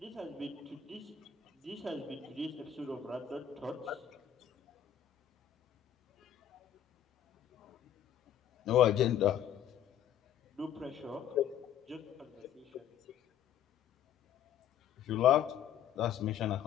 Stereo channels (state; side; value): quieter; right; 9.9 dB